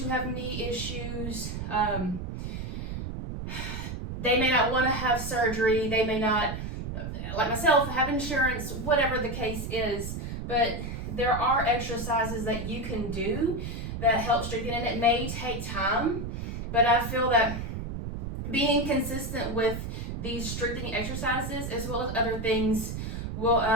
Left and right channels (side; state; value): right; noise; rumble, 5 dB below the sound